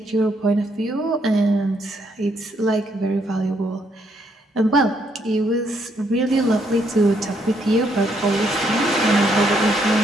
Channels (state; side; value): normal; both; correlation 0.73